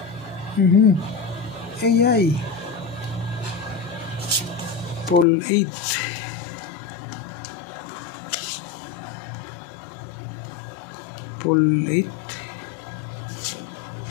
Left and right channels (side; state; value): right; drops out; at 5.2 s